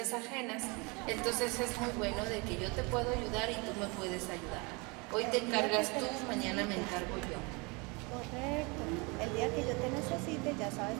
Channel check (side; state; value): left; quieter; 28.7 dB